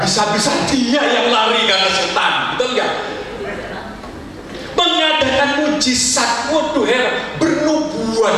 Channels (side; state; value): both; identical; correlation 1.00